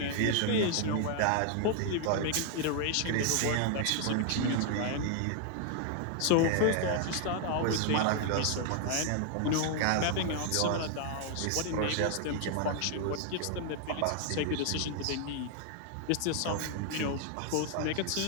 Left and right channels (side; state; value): both; different; correlation 0.00